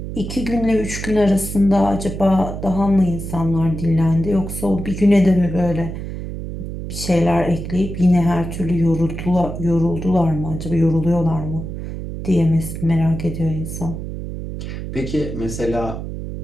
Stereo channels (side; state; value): right; noise; hum, 7 dB below the sound